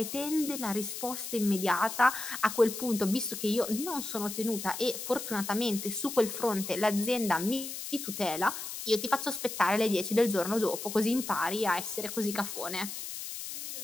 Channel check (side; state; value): left; noise; hiss, 7 dB below the sound